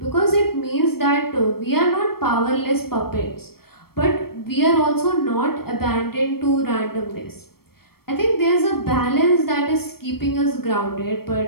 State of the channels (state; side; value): late; right; 0.94 ms